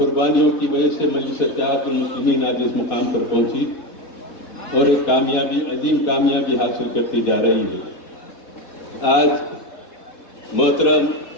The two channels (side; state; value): right; late; 4.2 ms